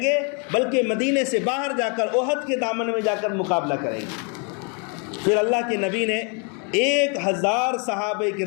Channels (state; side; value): quieter; right; 35.9 dB